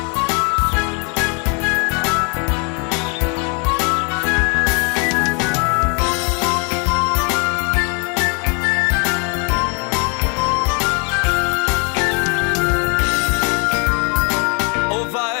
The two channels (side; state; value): right; quieter; 36.1 dB